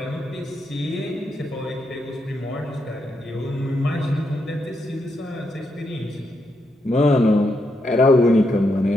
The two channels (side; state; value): both; normal; correlation 0.81